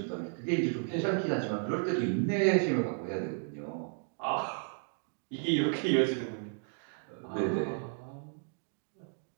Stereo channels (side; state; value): left; silent; 56 dB below the other